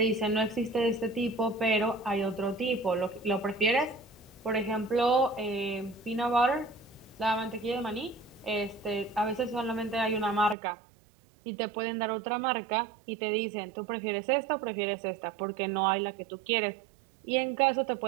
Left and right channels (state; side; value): drops out; left; at 10.6 s